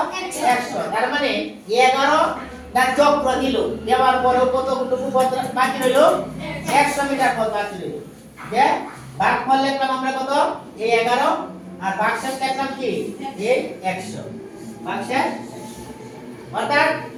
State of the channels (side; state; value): both; identical; correlation 1.00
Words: 100। তার মানে 11 টা চক্র দিল, দেওয়ার পরেও কতটুকু পথ বাকি রইল? 100 মিটার পথ বাকি রইল। যে ভাগ ফল লিখলাম আমরা কত? এই 11, আর ভাগ শেষ লিখলাম কি? এই 100। ভাগ শেষ, অর্থাৎ